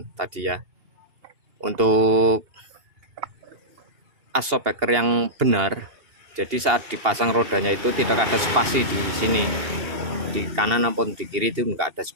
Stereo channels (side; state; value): left; late; 2.8 ms